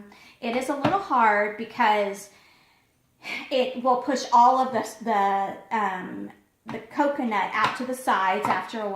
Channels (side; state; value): both; identical; correlation 1.00